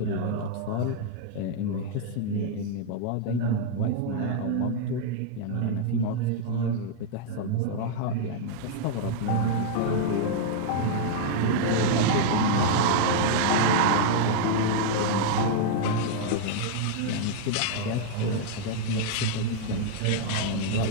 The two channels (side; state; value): both; different; correlation -0.01